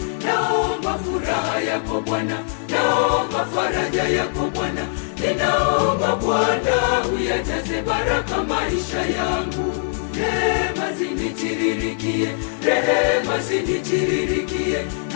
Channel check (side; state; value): right; silent; digital silence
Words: Naomba furaha yako Bwana, naomba faraja yako Bwana. Ninaomba Bwana uyajaze baraka maisha yangu. Rehema zinitiririkie, rehema zinitiririkie.